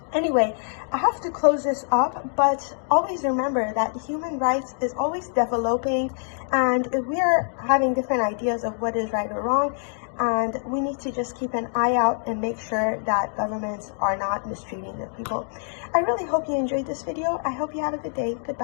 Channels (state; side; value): silent; right; digital silence